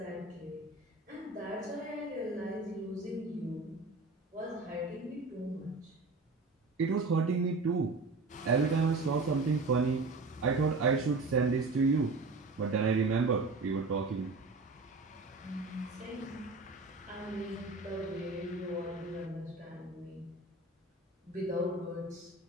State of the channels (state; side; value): quieter; left; 3.5 dB